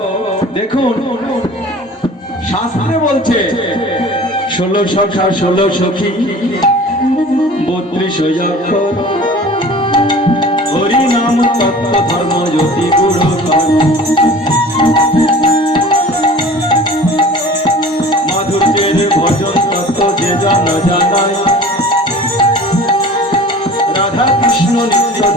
দেখুন, শাস্ত্রে বলছে 16 সখা 16 সখী 32 অক্ষর, হরি নাম তত্ত্ব ধর্ম জ্যোতি গুরু মাধুর্যের ভজন তত্ত্ব যে জানায়, রাধা কৃষ্ণ নিত্য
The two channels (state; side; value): normal; both; correlation 0.43